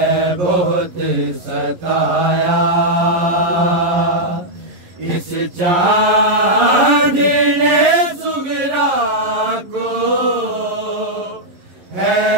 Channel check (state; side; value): late; left; 11 ms